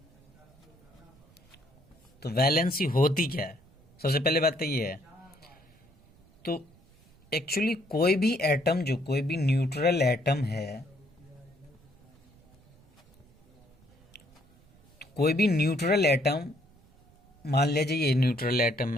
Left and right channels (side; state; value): right; noise; rumble, 29 dB below the sound